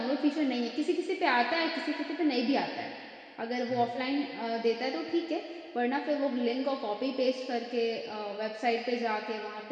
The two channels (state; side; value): identical; both; correlation 1.00